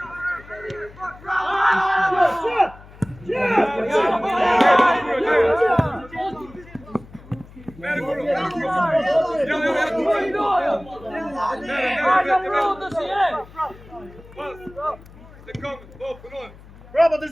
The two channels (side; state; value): left; noise; hum, 21 dB below the sound